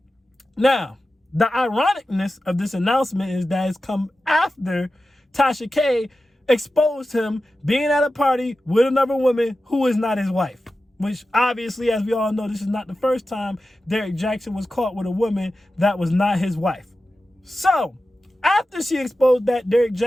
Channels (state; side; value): normal; both; correlation 0.93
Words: Now, the ironicness of this announcement is that it's come after Tasha K exposed him being at a party with another woman who is not his wife. Which obviously, as we all know, this is not the first time Derrick Jaxn was caught with a woman that was not his wife. So, after she exposed that, Derrick